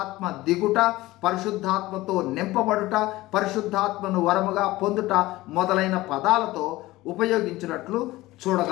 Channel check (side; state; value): right; quieter; 18.3 dB